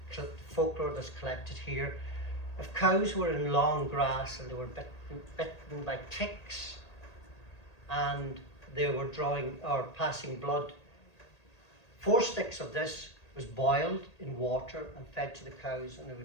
The folklore that's collected here. If cows were in long grass and they were bitten by ticks and they were drawing or passing blood, 4 sticks of this was boiled in water and fed to the cows, and it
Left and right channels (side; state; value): right; late; 1.8 ms